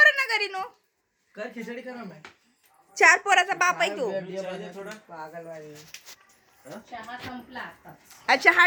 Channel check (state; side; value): identical; both; correlation 1.00